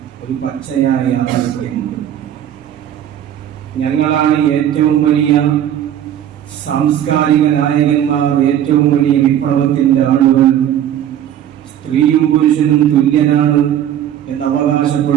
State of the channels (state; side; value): quieter; left; 10.7 dB